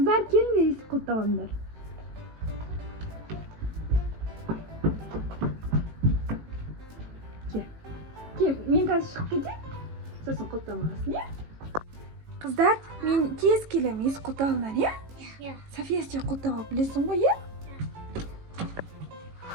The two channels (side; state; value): left; late; 18 ms